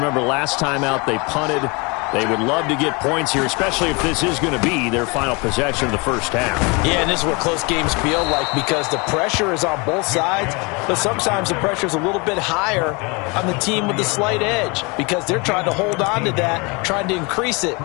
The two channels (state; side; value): quieter; right; 28.9 dB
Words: last time out they punted. They would love to get points here, especially if this is going to be their final possession of the first half. Yeah, and this is what close games feel like because the pressure is on both sides, but sometimes the pressure is a little bit higher on the team with the slight edge because they're trying to hold on to that, trying to increase it.